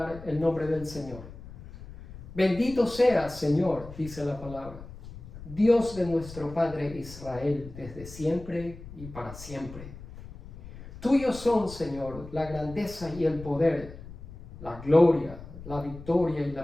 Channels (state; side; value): noise; left; rumble, 15 dB below the sound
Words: el nombre del Señor. Bendito seas, Señor, dice la palabra, Dios de nuestro Padre Israel, desde siempre y para siempre. Tuyos son, Señor, la grandeza y el poder, la gloria, la victoria y